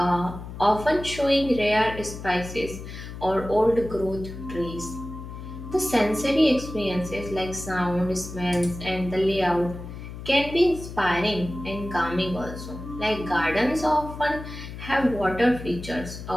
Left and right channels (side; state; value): left; noise; hum, 11 dB below the sound